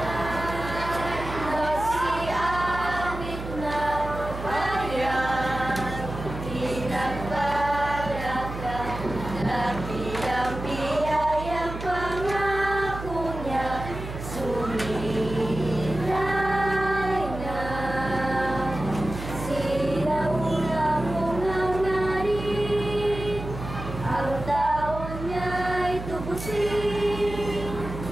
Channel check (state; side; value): noise; right; hum, 8 dB below the sound